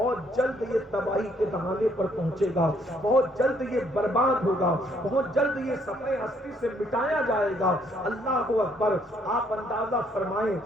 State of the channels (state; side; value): normal; both; correlation 0.68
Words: جلد یہ تباہی کے دہانے پر پہنچے گا، بہت جلد یہ برباد ہوگا، بہت جلد یہ صفحے ہستی سے مٹایا جائے گا۔ اللہ اکبر۔ آپ اندازہ فرمائیں